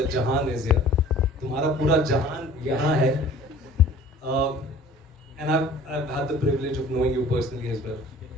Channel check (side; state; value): both; normal; correlation 0.49